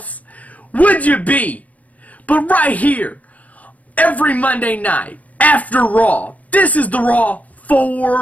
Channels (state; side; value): late; right; 0.070 ms